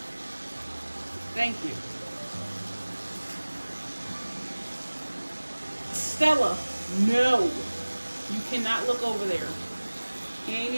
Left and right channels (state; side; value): inverted; both; correlation -1.00